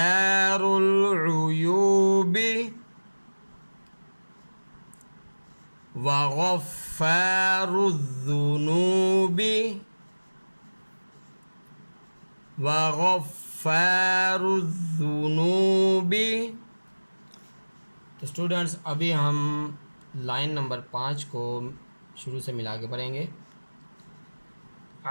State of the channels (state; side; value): inverted; both; correlation -1.00